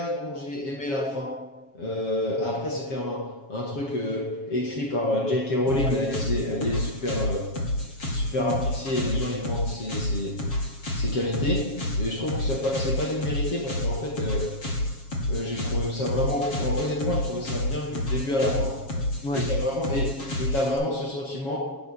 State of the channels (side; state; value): right; late; 7.3 ms